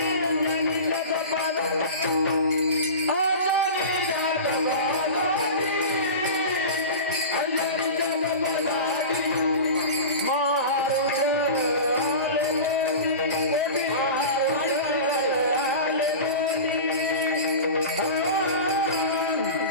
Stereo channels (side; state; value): both; inverted; correlation -0.31